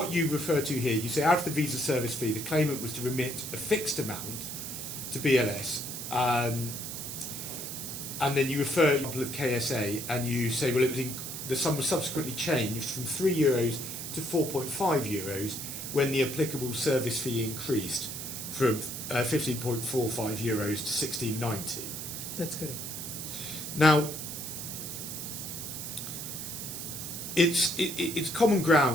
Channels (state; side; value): noise; right; hiss, 7 dB below the sound